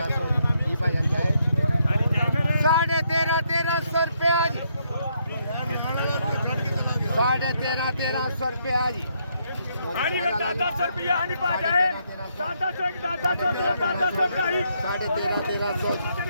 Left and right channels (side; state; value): both; inverted; correlation -0.75